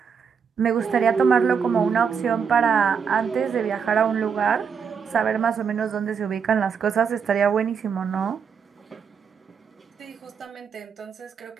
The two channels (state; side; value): quieter; left; 6.6 dB